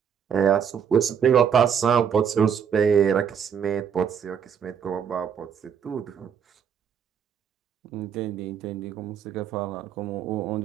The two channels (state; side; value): quieter; left; 7.6 dB